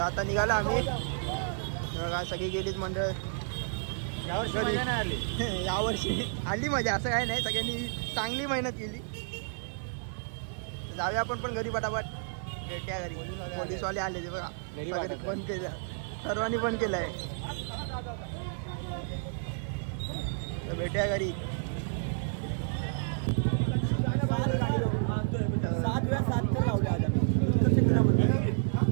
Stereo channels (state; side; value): silent; left; 57 dB below the other